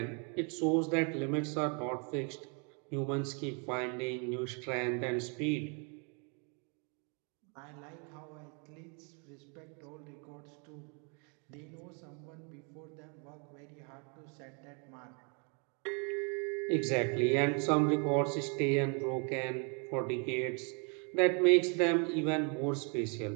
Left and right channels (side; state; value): left; quieter; 36.3 dB